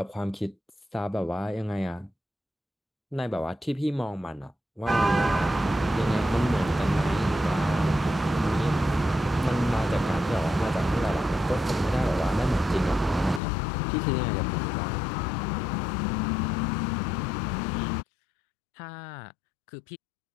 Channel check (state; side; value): drops out; right; at 13.4 s